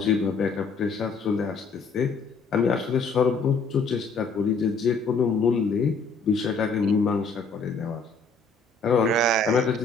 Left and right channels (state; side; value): quieter; right; 4.1 dB